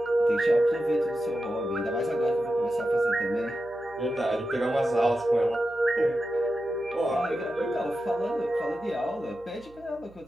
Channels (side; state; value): right; noise; hum, 25 dB below the sound